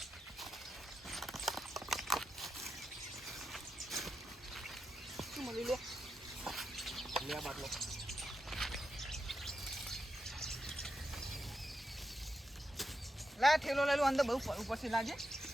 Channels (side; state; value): both; normal; correlation 0.87